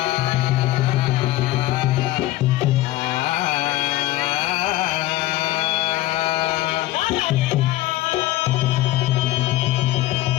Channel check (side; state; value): right; quieter; 16.2 dB